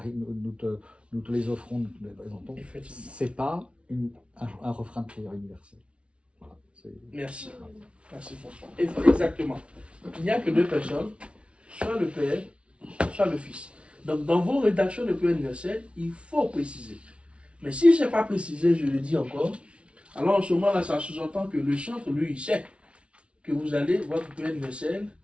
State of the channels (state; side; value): late; left; 0.060 ms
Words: nous te les offrons, nous te les présentons. C'est pas un refrain de prière universelle. Voilà, merci. Merci François. Exactement. Il n'y a que deux personnes, soit le Père, soit le Fils. Donc dans vos rédactions de prière universelle, il faut préciser. Mais si ce n'est pas précisé, je le dis encore, alors en ce moment-là, ça sous-entend que le chantre, lui, il sait que votre prière universelle